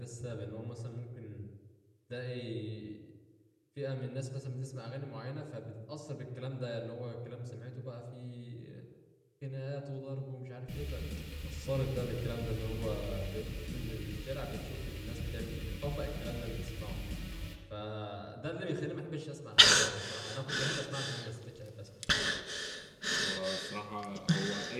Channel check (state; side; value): identical; both; correlation 1.00